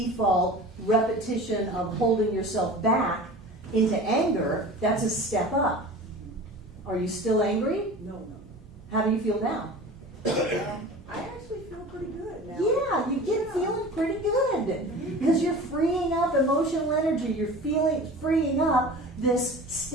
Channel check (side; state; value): both; normal; correlation 0.38